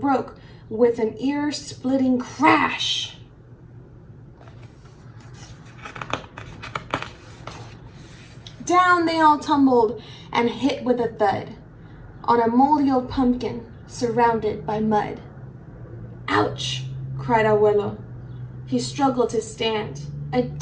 with an ear-splitting crash. Down they all tumbled and hit with a thud on a moldy old pumpkin surrounded by mud. "Ouch!" cried Abuelo. He struggled to stand. "A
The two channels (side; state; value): both; identical; correlation 1.00